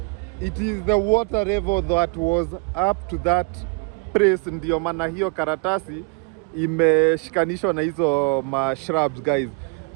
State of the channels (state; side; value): quieter; left; 31.0 dB